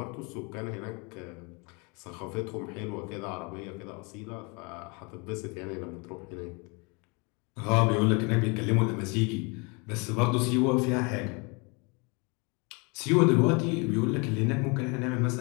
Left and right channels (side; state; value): right; quieter; 30.8 dB